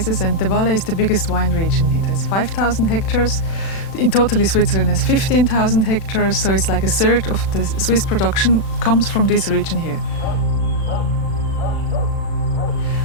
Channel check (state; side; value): late; right; 36 ms